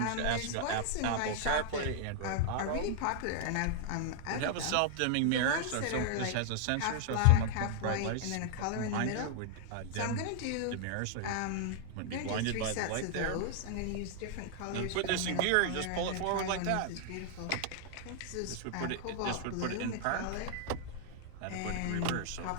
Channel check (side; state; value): both; different; correlation -0.01